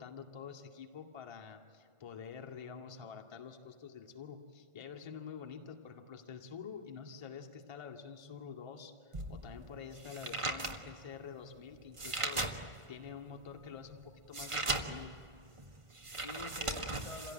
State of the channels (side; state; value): left; late; 1.5 ms